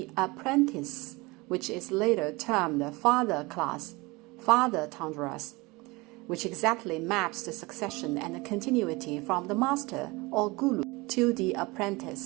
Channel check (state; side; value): quieter; left; 23.9 dB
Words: apprentice, which is later termed father class, father tundras, which exactly maps the succession and continuity from the master or guru to the